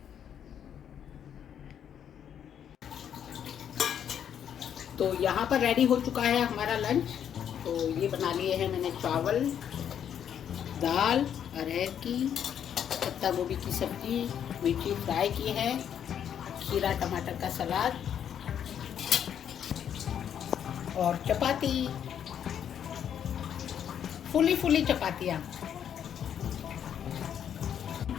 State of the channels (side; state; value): right; quieter; 9.0 dB